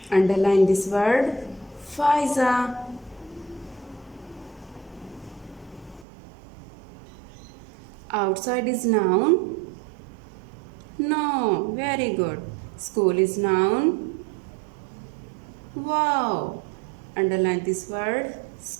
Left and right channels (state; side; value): drops out; left; at 6.1 s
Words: Underline this word Faiza. Outside is noun. No. Very good. School is noun. Wow. Underline this word